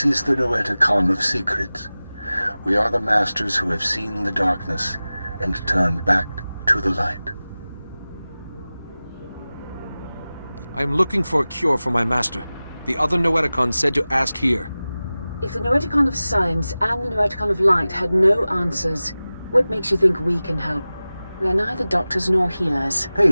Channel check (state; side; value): inverted; both; correlation -0.97